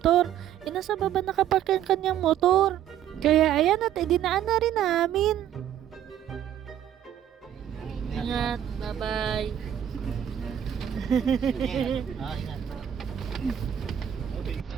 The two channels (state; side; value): quieter; left; 10.5 dB